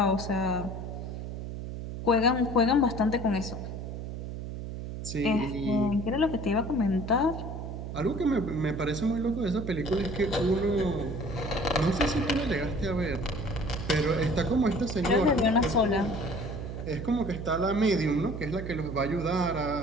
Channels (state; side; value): noise; right; hum, 7 dB below the sound